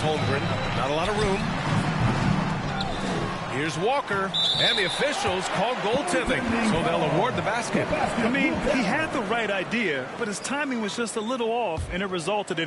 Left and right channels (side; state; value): both; identical; correlation 1.00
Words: Holmgren. Not a lot of room. Here's Walker, and the officials call goaltending, so they'll award the basket. I mean, he had the right idea, but his timing was just a little off, and it resulted